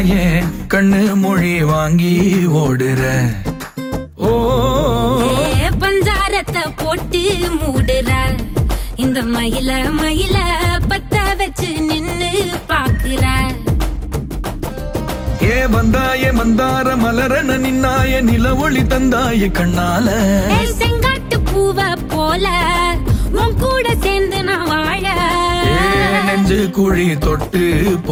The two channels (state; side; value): identical; both; correlation 1.00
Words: கண்ணு மொழி வாங்கி ஓடுற. ஓ பஞ்சாரத்தை போட்டு மூடுற இந்த மயில மயில பத்த வச்சு நின்னு பாக்குற. ஏ வந்தாய மந்தார மலரன நின்னாய நில ஒளி தந்தாய கண்ணால. செங்காட்டு பூவ போல உன் கூட சேர்ந்து நான் வாழ. நெஞ்சு குழி தொட்டு